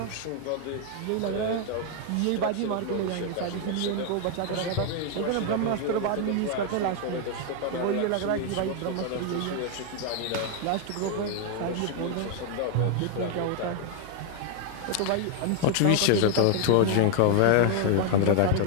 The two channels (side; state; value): both; different; correlation 0.00